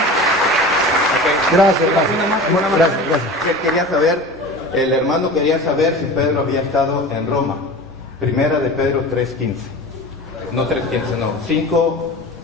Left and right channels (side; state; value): both; normal; correlation 0.35